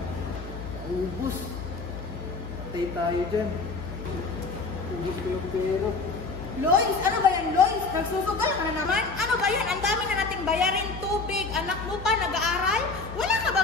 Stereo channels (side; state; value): right; quieter; 3.9 dB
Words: Ubus. Patay tayo dyan. Ubus ko yung pera. Lois, ano ba yan, Lois? Nagsusugal ka na naman? Ano ba yan? Ang dami na nating bayarin, tubig, anak mo pa, nag-aaral? Wala ka